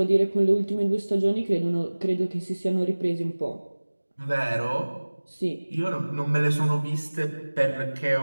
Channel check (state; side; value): inverted; both; correlation -1.00